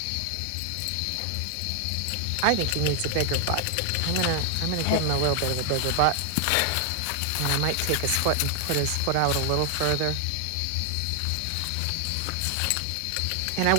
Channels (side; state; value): both; different; correlation 0.00